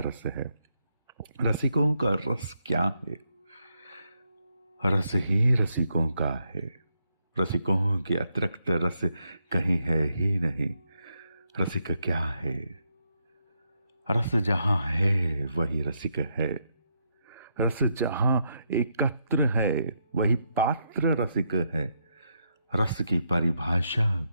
रस है। रसिकों का रस क्या है? रस ही रसिकों का है। रसिकों के अतिरिक्त रस कहीं है ही नहीं। रसिक क्या है? रस जहाँ है वही रसिक है। रस जहाँ एकत्र है वही पात्र रसिक है। रस की परिभाषा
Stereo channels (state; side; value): inverted; both; correlation -0.79